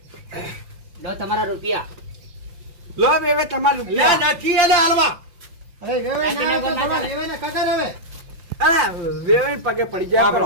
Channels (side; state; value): left; late; 5.8 ms